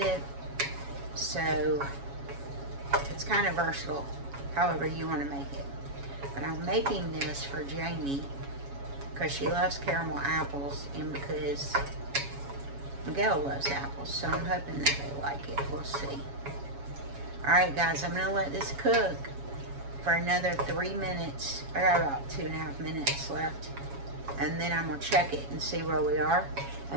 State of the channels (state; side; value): late; left; 7.2 ms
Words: So it's kind of versatile, however you want to make it. But I'm making this for Jamie because she loves caramel apples, and because Miguel loves apples, so I'm hoping that they like it. We'll see. Alright guys, I'm going to let this cook for another 3 minutes. I got about 2.5 minutes left. And then I'm going to check it and see where we are.